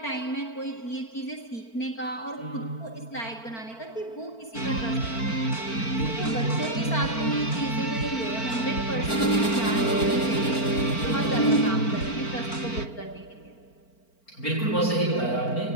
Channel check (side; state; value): right; late; 4.4 ms